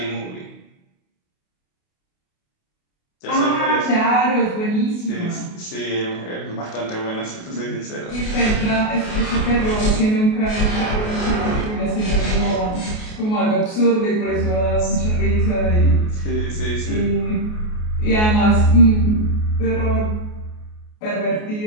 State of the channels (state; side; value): late; right; 28 ms